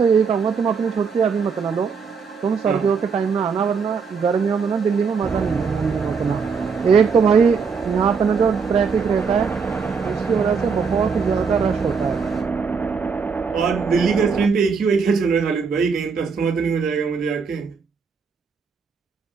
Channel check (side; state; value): left; quieter; 5.6 dB